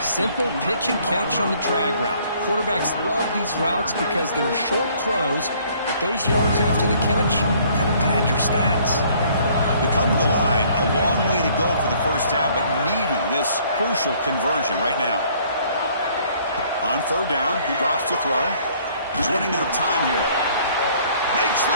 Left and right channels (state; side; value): inverted; both; correlation -0.60